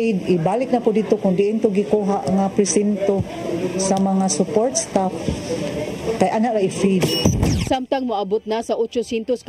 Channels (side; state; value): both; identical; correlation 1.00